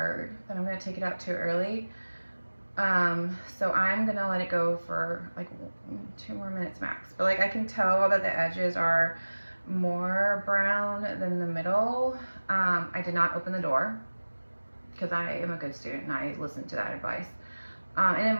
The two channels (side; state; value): both; inverted; correlation -1.00